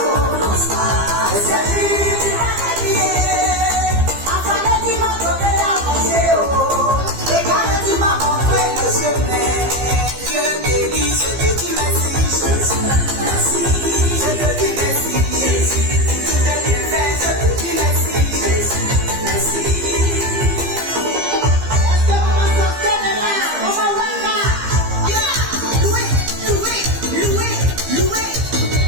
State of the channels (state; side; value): late; left; 15 ms